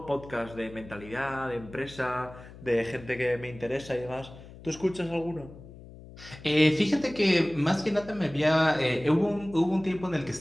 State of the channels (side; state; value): left; noise; hum, 17 dB below the sound